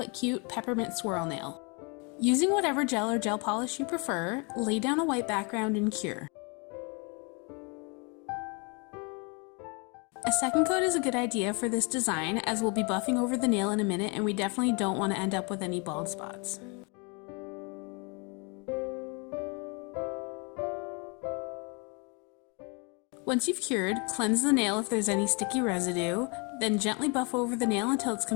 cute peppermint swirl nail. Using whatever gel or gel polish you prefer, lay down a white background and cure. A second coat is a good idea for this design as we'll be buffing over the nail in a minute and we definitely don't want to end up with any bald spots. Once you've cured, cleanse the nail if there's any sticky residue, then gently buff over the nail until it's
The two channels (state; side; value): quieter; right; 32.6 dB